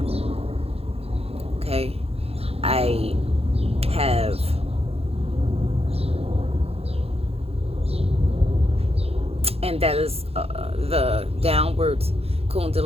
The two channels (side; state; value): left; late; 0.29 ms